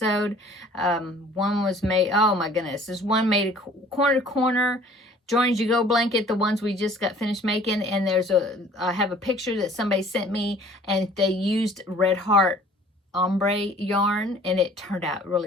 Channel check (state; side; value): normal; both; correlation 0.52